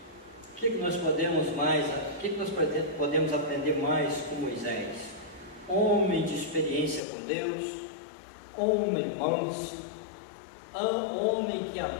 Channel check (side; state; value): right; drops out; at 7.0 s